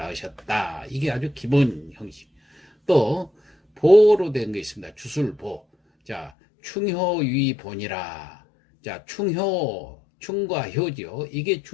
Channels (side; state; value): right; drops out; at 6.3 s